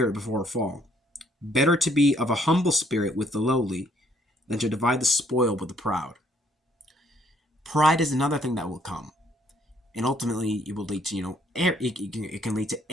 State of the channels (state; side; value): normal; both; correlation 0.66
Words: before a fall. Better to be of a humble spirit with the lowly than to divide the spoil with the proud. Pride is another thing that will come. And ultimately, it will lead to, it can lead to